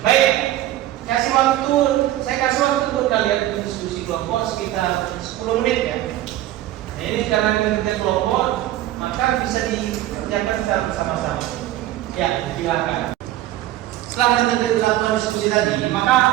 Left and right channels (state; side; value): quieter; left; 14.2 dB